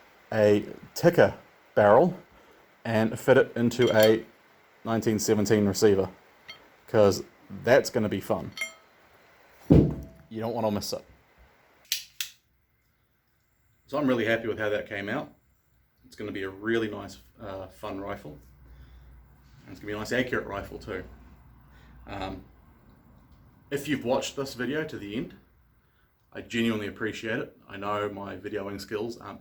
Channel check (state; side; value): identical; both; correlation 1.00